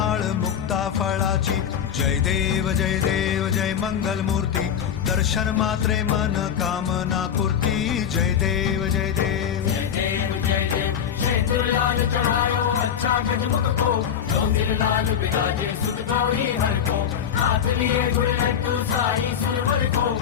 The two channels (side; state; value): right; quieter; 8.5 dB